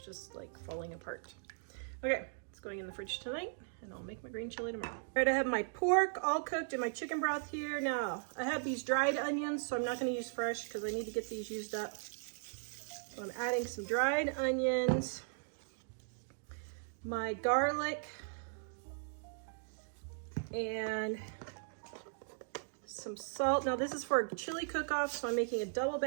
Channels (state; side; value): silent; left; digital silence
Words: just like falling apart. Okay, it's going in the fridge tonight, and I'll make my green chili tomorrow. All right, I have my pork all cooked in my chicken broth here. Now, I have these dried onions, so I'm not gonna use fresh because I need to get these used up. So I'm adding some dried onions, my garlic, and some salt. Now this is for a chili cook-off, so I'm making a double